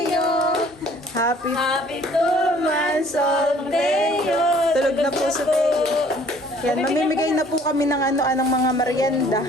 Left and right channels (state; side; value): noise; right; hum, 29 dB below the sound